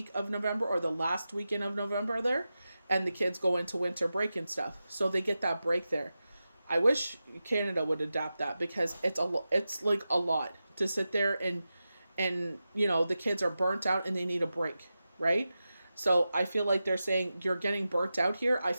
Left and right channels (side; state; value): both; inverted; correlation -0.92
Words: of November or the last weekend of November there. And the kids go into winter break and stuff. So they get that break there. I wish Canada would adapt that, because it's like a lot to sit there and the kids are burnt out and they need a break, right? So I feel like they're saying you're getting burnt out here. I